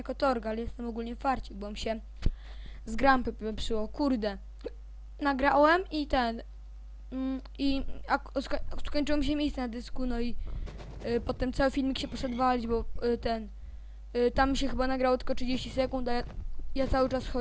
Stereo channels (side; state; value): both; identical; correlation 1.00